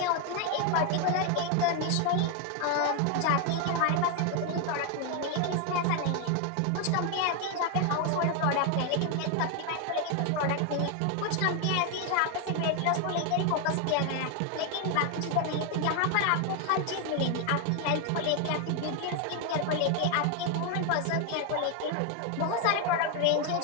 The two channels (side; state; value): both; different; correlation 0.01